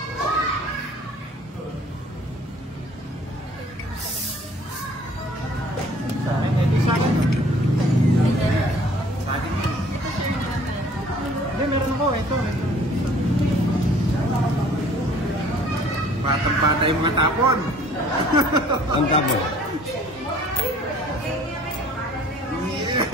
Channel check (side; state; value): both; normal; correlation 0.54